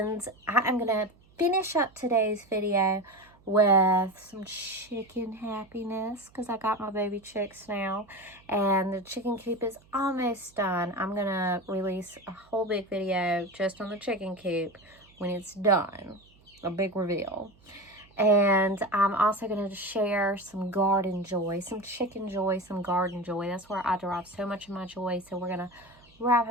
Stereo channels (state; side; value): noise; right; hum, 29 dB below the sound